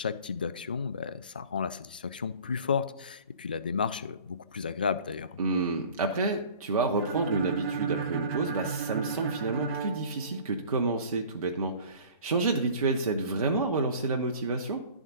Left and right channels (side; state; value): both; inverted; correlation -0.46